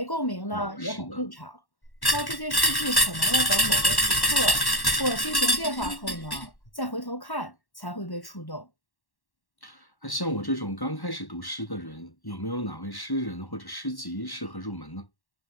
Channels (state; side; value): late; right; 1.1 ms